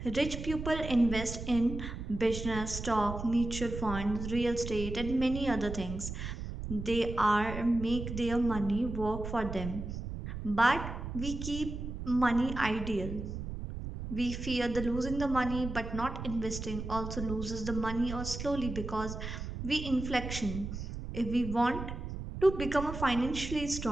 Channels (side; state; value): right; noise; rumble, 7 dB below the sound